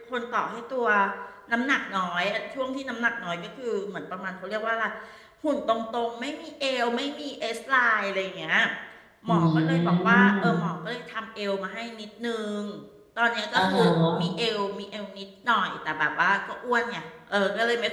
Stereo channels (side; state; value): both; identical; correlation 1.00